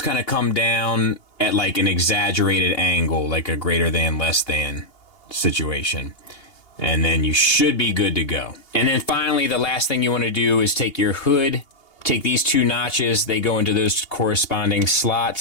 kind of come down at like an exaggerated angle, like a greater than, less than situation. And then you should be good to go. And then finally, the last thing you want to do is take your hood, take these two notches, they go into those corresponding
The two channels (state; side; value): late; right; 2.8 ms